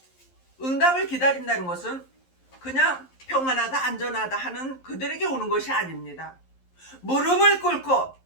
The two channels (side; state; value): right; late; 11 ms